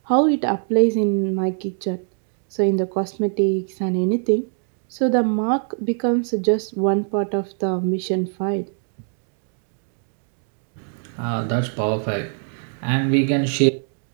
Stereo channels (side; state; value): left; silent; digital silence